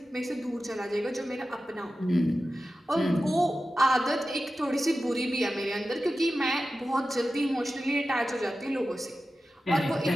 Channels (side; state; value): both; normal; correlation 0.93